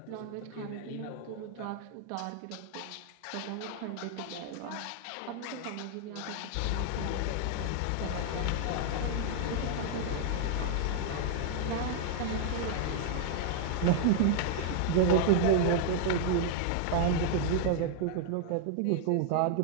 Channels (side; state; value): both; different; correlation 0.00